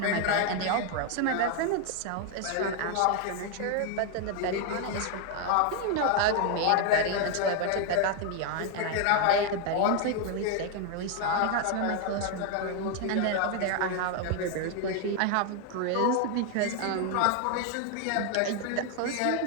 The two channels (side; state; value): both; different; correlation 0.01